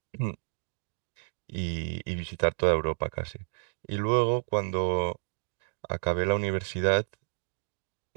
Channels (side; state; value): left; silent; digital silence